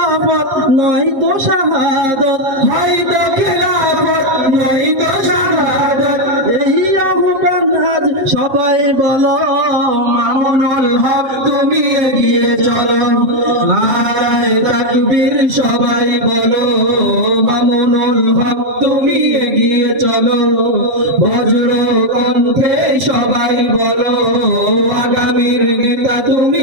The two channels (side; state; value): left; late; 7.4 ms